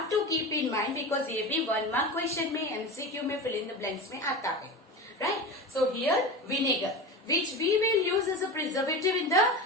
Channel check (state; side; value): normal; both; correlation 0.27